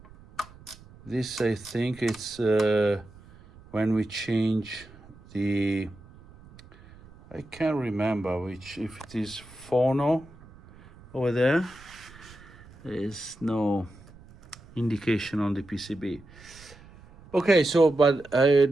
this I think it's when we change the, I can't remember which, if it is Phono over there. There is no indication on the PCB. Okay, so but I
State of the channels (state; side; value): noise; right; rumble, 22 dB below the sound